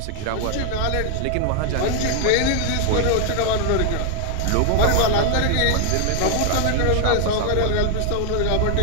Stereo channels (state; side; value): different; both; correlation 0.00